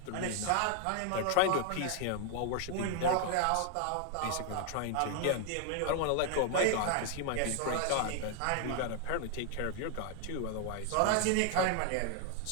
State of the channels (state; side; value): different; both; correlation 0.00